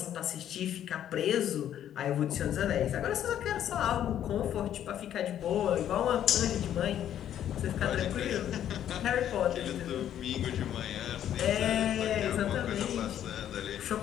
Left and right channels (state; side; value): quieter; right; 10.6 dB